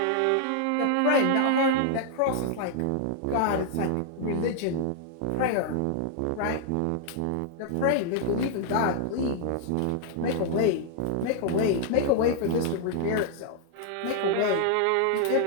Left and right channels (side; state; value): both; different; correlation 0.00